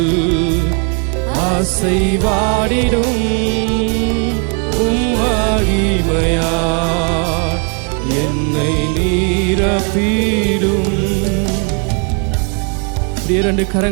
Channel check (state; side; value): quieter; left; 39.3 dB